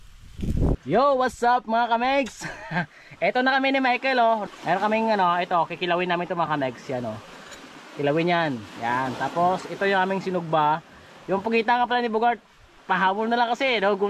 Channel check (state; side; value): identical; both; correlation 1.00